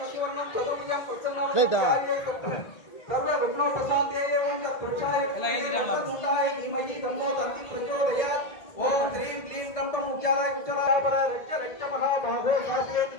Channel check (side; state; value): right; late; 1.8 ms